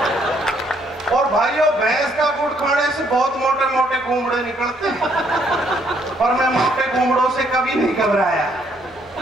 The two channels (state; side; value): normal; both; correlation 0.69